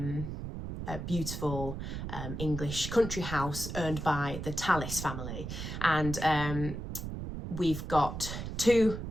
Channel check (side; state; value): right; noise; rumble, 6 dB below the sound